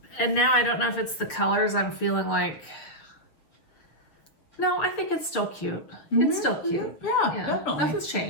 And now I don't know if it's the colors. I'm feeling like, no, I think it's still cute. It's still cute. Yeah, definitely. Nothing's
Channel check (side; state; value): right; late; 6.6 ms